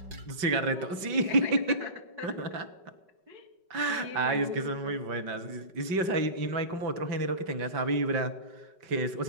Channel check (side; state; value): left; late; 5.3 ms